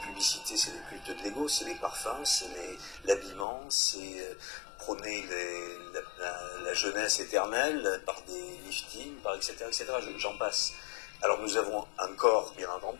c'est le culte de l'ego, c'est les parfums, c'est l'habillement, c'est prôner la jeunesse éternelle par des liftings, par etc., etc. J'en passe. Alors nous avons un corps, bien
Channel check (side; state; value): right; drops out; at 3.5 s